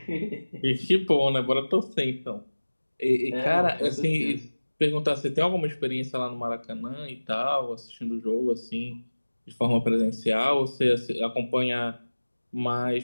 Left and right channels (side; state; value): both; inverted; correlation -1.00